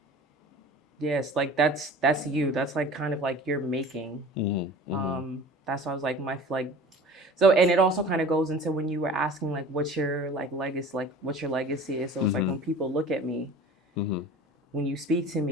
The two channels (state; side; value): normal; both; correlation 0.42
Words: Yes, like that's you. That's like kind of like your making. That's why I was like so, and it also kind of goes into when you were asking like what's your like legacy, like what your legacy is. So it's like when people look at me, when you speak to